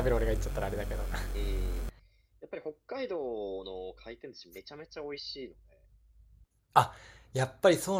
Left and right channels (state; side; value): identical; both; correlation 1.00